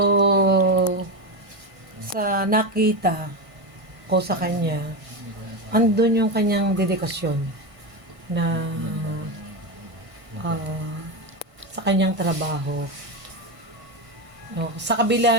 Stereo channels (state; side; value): late; left; 1.6 ms